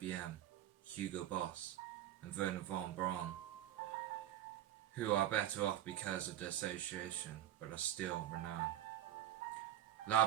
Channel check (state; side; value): quieter; left; 12.4 dB